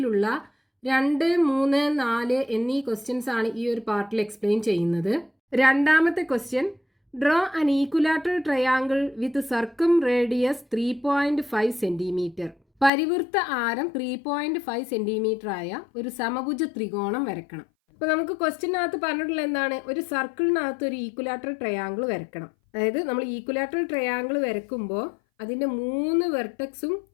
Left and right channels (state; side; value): drops out; right; at 12.9 s